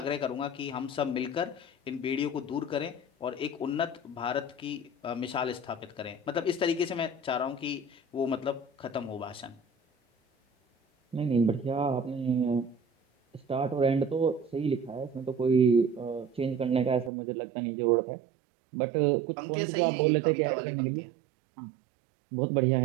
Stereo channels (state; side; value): drops out; left; at 17.1 s